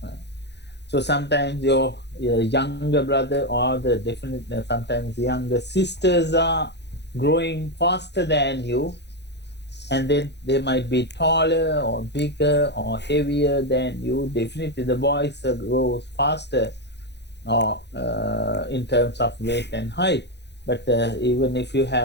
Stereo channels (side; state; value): right; late; 0.50 ms